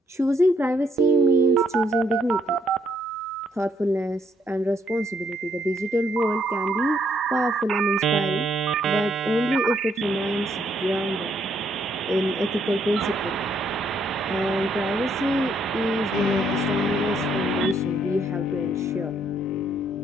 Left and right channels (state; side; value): normal; both; correlation 0.70